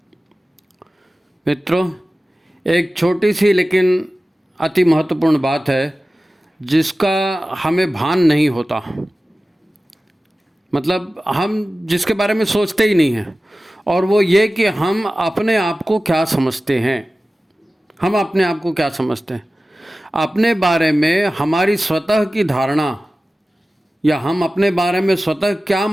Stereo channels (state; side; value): normal; both; correlation 0.96